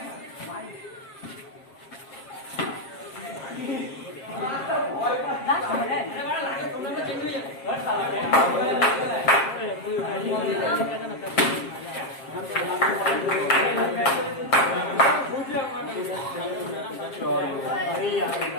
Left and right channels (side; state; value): right; late; 7.5 ms